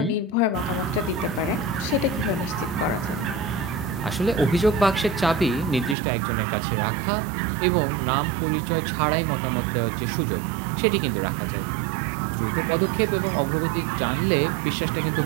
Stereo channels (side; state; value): left; drops out; at 6.0 s